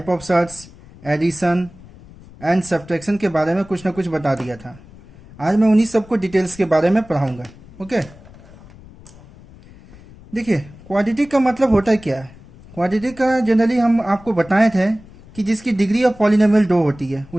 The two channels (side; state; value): left; noise; rumble, 21 dB below the sound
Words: of sets, addition and subtraction के बारे में कुछ ना कुछ बता दिया था। आज मैं उन्हीं सबको डिटेल्स के बारे में पढ़ाऊँगा। ओके, देखिए क्वाड्रेटिक का मतलब होता है क्या है। क्वाड्रेटिक का जनरली हम आपको बताए थे कि जिसकी डिग्री ऑफ पॉलिनोमियल 2 होती है